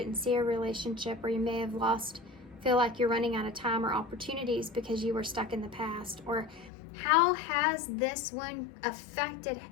see a relationship, or you may have feel like you're running out of time or opportunities because you were stuck in the past. Or how has this one affected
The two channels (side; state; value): right; drops out; at 6.7 s